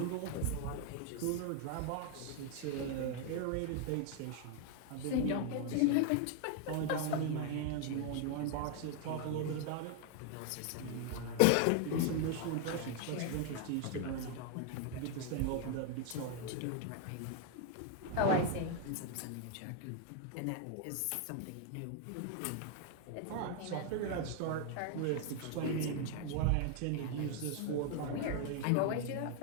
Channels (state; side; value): different; both; correlation 0.00